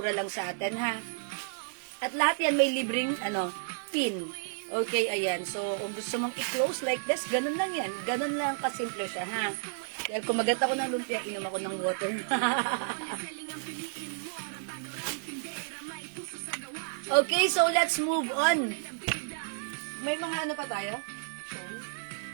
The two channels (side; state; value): left; silent; digital silence